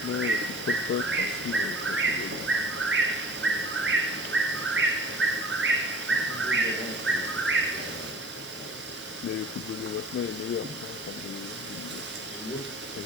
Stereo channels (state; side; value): normal; both; correlation 0.43